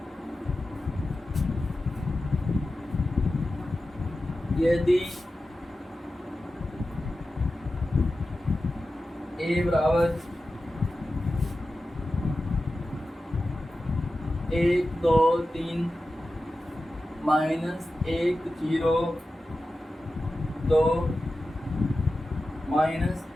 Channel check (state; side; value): normal; both; correlation 0.93